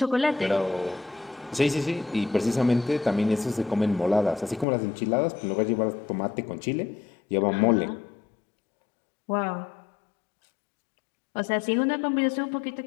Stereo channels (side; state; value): right; drops out; at 4.7 s